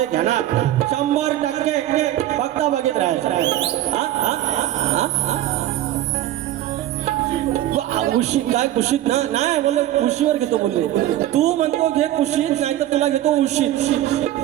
घेणार 100%. फक्त बघित राहायचं. कुशीत काय कुशीत ना नाही बोलले, कुशीवर घेतो बोलले. तू म्हणतो घे कुशीत, नाही तर तुला घेतो उशीत.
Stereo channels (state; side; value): quieter; left; 13.6 dB